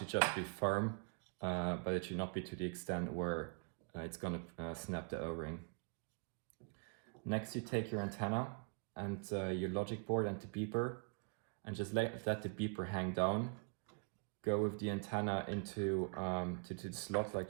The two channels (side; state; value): left; quieter; 38.8 dB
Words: just be firm, but it should not be to the extent where it's going to snap the O-ring. Next you take your antenna and your logic board and the beeper, and just let the beeper hang down. Go with the antenna into to the slot, like